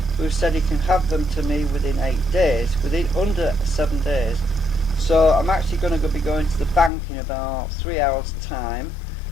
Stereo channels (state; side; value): drops out; right; at 6.9 s